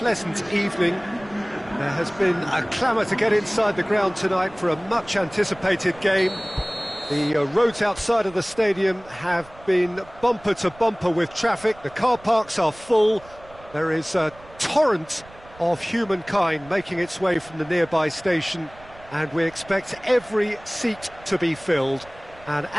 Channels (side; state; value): right; noise; rumble, 23 dB below the sound